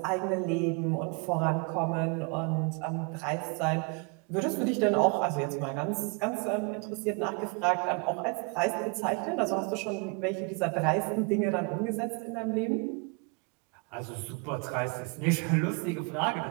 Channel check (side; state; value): left; quieter; 33.0 dB